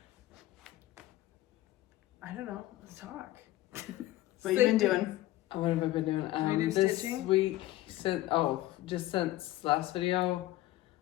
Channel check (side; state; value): right; quieter; 16.0 dB